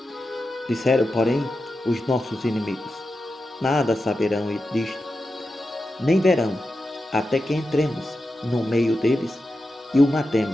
Disseram, porém, os nossos inimigos: Nada saberão disto, nem verão, até que entremos no meio deles e o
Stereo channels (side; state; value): both; normal; correlation 0.90